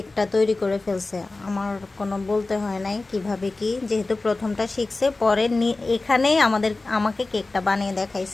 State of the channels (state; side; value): quieter; right; 3.3 dB